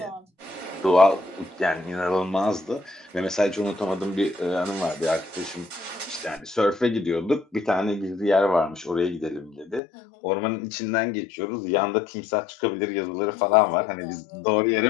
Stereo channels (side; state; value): right; drops out; at 9.8 s